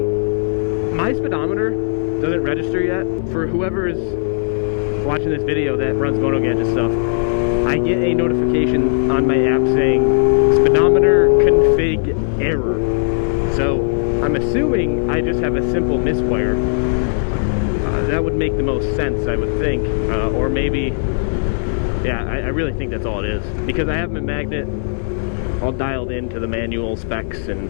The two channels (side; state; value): right; silent; 61 dB below the other